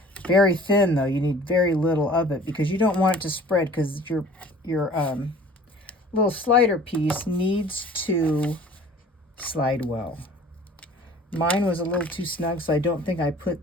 Very thin though, you need very little of it because you don't want it to spread, because your little slider piece needs to slide well. Mine was a little too snug, so I don't think I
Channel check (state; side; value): normal; both; correlation 0.48